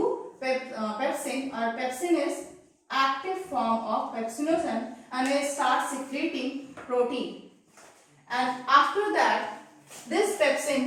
pepsin, or pepsin is active form of pepsinogen, and it starts secreting protein. And after that, this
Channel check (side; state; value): both; identical; correlation 1.00